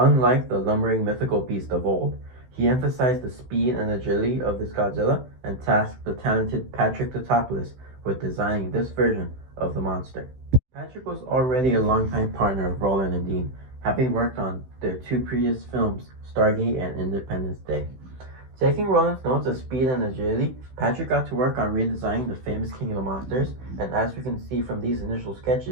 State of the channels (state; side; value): late; left; 16 ms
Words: the lumbering mythical beast of old. He emphasized the speed and agility of this Godzilla and tasked the talented Patrick Tatopoulos with designing this version of the monster. Patrick was already a longtime partner of Roland and Dean, having worked on their two previous films, Stargate and Independence Day. Taking Roland's notes of speed and agility, Patrick got to work on redesigning the famous King of the Monsters, and as we can see from these initial